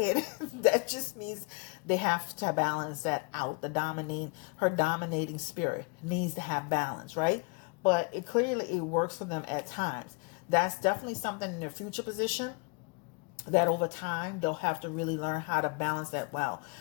That just means they have to balance that out. Her dominating spirit needs to have balance, right? But it clearly works for them at times. That's definitely something in their future position that over time they'll have to really learn how to balance that well,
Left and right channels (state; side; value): quieter; right; 32.1 dB